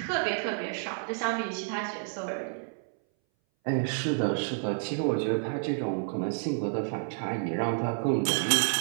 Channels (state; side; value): silent; left; 58 dB below the other